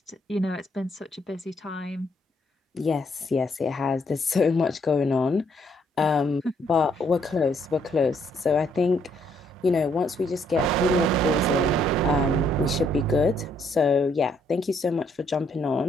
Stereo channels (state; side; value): normal; both; correlation 0.70